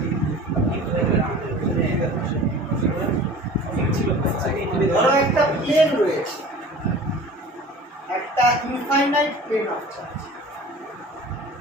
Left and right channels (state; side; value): normal; both; correlation 0.41